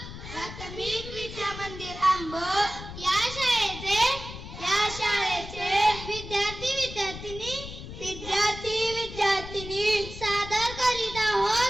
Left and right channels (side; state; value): left; noise; rumble, 11 dB below the sound